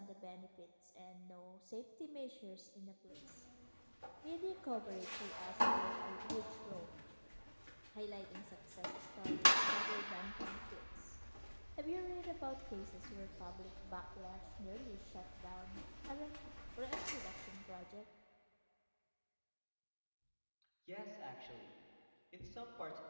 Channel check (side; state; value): both; inverted; correlation -1.00